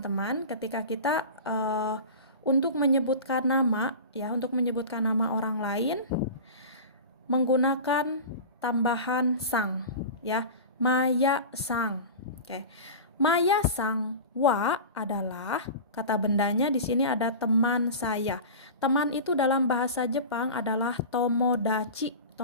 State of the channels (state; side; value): inverted; both; correlation -0.31